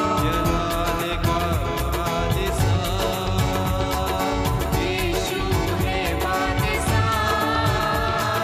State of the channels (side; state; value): both; identical; correlation 1.00